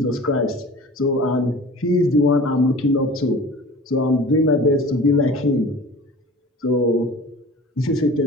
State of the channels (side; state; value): both; normal; correlation 0.41